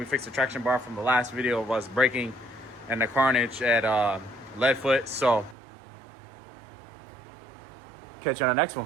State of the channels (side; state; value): left; drops out; at 5.6 s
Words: fixed the traction bar from the last video of us braking and the carnage at Leadfoot. So catch you on the next